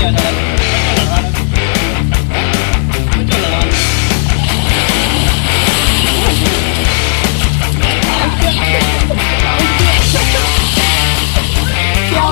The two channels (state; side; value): silent; right; digital silence